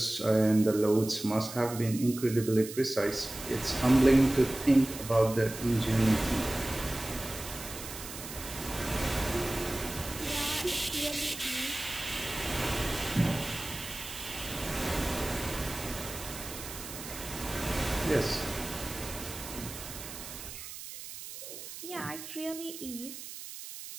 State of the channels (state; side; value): noise; right; hiss, 11 dB below the sound